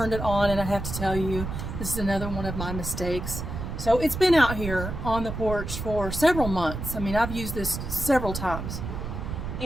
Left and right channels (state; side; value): noise; right; rumble, 6 dB below the sound